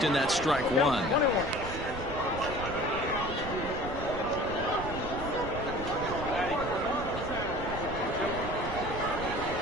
and that's strike 1.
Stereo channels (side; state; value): right; noise; rumble, 9 dB below the sound